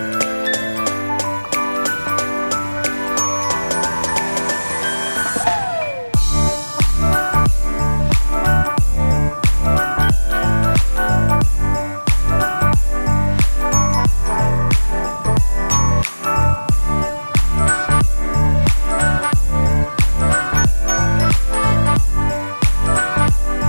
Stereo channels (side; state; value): both; inverted; correlation -1.00